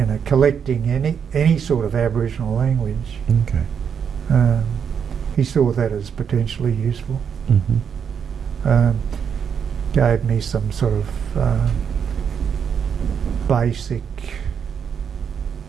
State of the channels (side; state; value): left; quieter; 7.3 dB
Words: collecting any sort of Aboriginal language. Okay. He saw that as potentially useful. Gave me some sort of basic,